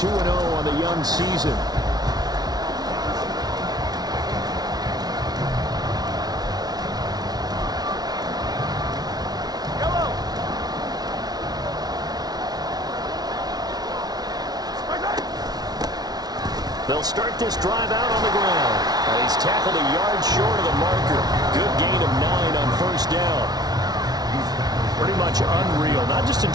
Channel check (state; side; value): late; left; 0.19 ms